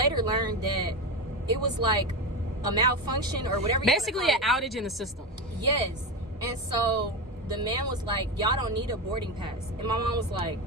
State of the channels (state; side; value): normal; both; correlation 0.18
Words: learned that it was like a malfunction or whatever. Basically an outage in the system. Yes. And so the man was like, y'all don't need a boarding pass. And my mom was like,